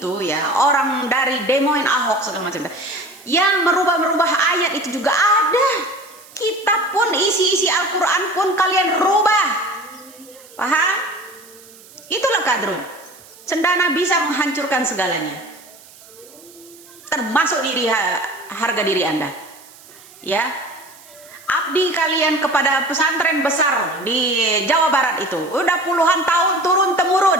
ya, orang dari demoin Ahok segala macam yang merubah ayat itu juga ada. Kitab pun, isi Al-Quran pun kalian rubah. Paham? Itulah kadrun. Cendana bisa menghancurkan segalanya, termasuk harga diri Anda. Ya, abdi kalian kepada pesantren besar di Jawa Barat itu udah puluhan tahun turun temurun,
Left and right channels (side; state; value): right; noise; hiss, 22 dB below the sound